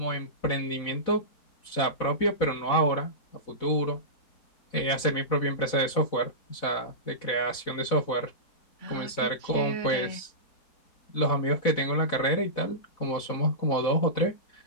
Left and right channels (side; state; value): right; late; 4.1 ms